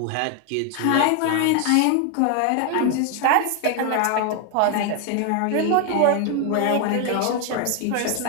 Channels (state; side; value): different; both; correlation 0.01